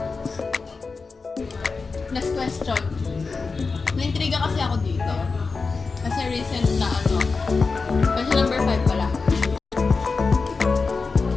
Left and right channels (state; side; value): quieter; right; 4.4 dB